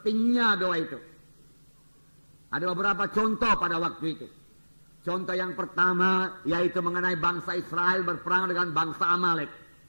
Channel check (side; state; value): both; inverted; correlation -1.00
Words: doa itu. Ada beberapa contoh pada waktu itu. Contoh yang pertama yaitu mengenai bangsa Israel berperang dengan bangsa Amalek.